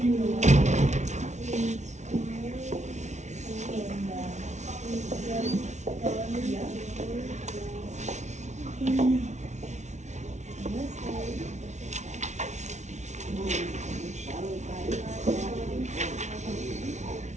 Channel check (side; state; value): left; late; 0.33 ms